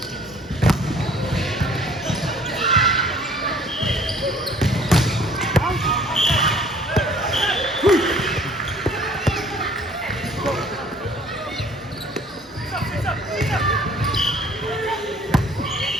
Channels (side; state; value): both; normal; correlation 0.55